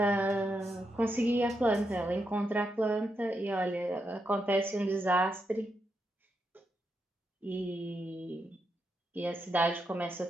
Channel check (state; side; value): normal; both; correlation 0.83